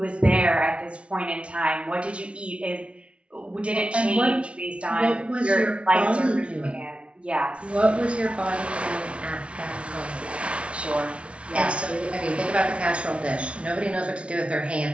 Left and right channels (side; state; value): left; late; 0.060 ms